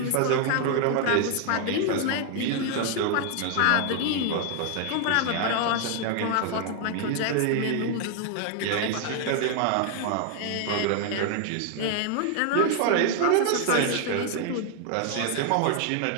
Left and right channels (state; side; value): different; both; correlation 0.00